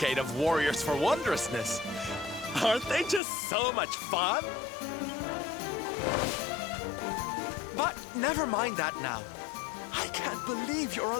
of warriors for wondrousness. Aren't they just so much fun? But never mind that now. I can't believe you're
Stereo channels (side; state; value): right; drops out; at 3.2 s